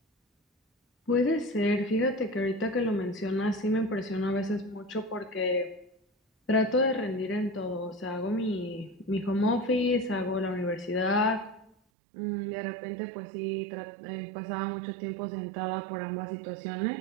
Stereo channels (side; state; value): left; drops out; at 11.8 s